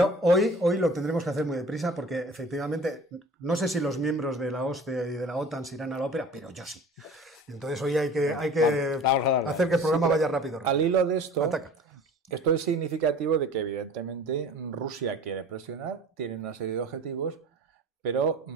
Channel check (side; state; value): both; normal; correlation 0.43